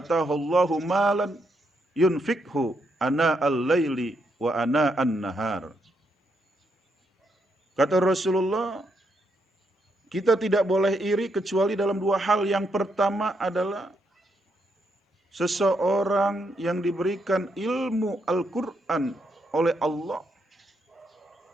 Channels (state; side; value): normal; both; correlation 0.78